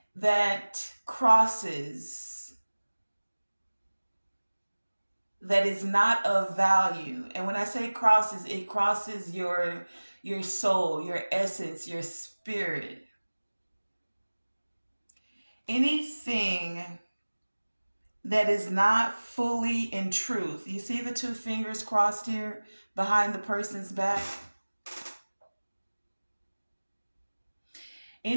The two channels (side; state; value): both; inverted; correlation -1.00